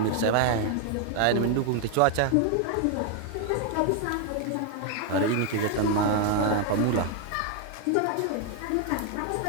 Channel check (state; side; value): different; both; correlation 0.01